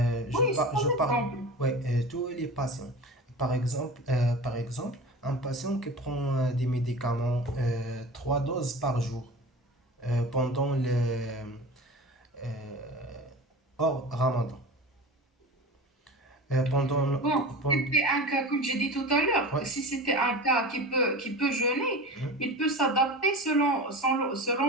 c'est Je un parle, exemple. ouais, tous les patients. Par exemple, un patient qui prend des médicaments 3 doses par jour pendant euh, hors Ramadan. Bon, si c'était un cas, comme j'ai dit tout à l'heure, Ouais, si c'était un cas qui peut jeûner, il peut s'adapter selon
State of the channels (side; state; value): both; normal; correlation 0.32